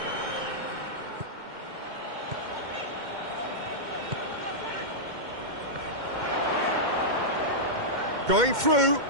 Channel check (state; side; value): late; left; 2.1 ms